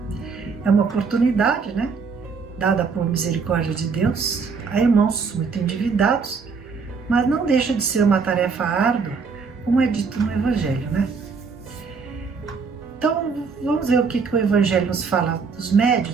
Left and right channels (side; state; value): left; quieter; 5.2 dB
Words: É uma oportunidade, dada por misericórdia de Deus, a irmãos muito endividados, mas não deixa de ser uma tarefa árdua, como é dito no Evangelho, Então, vamos ver o que o Evangelho nos fala dos